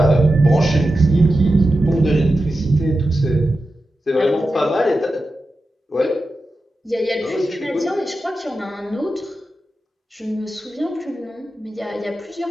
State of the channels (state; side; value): normal; both; correlation 0.91